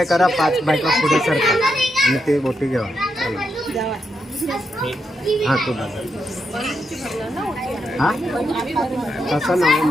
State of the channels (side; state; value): both; normal; correlation 0.82